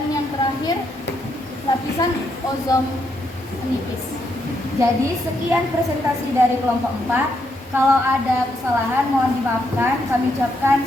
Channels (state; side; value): normal; both; correlation 0.77